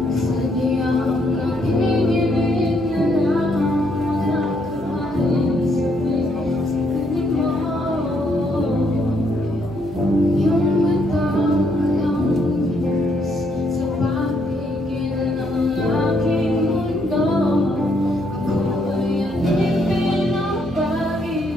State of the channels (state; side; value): noise; right; hum, 19 dB below the sound